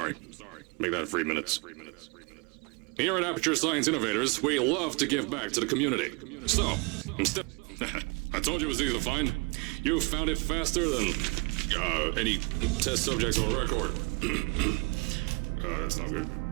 Make that 3 minutes. Here at Aperture Science Innovators, we love to give back to the community. So, instead... I told you it was easy to find. You found it faster than any test subjects on record. That's not good.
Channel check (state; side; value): quieter; left; 29.8 dB